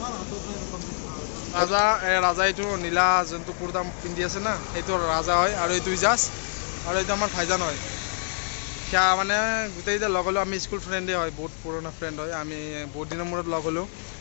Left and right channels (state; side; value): silent; right; 61 dB below the other